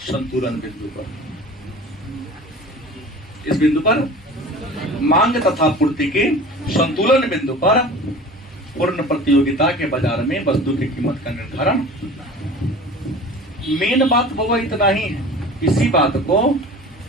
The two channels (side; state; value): both; normal; correlation 0.40